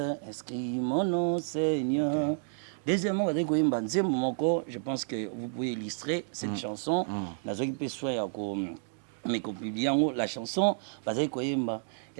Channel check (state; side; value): silent; left; digital silence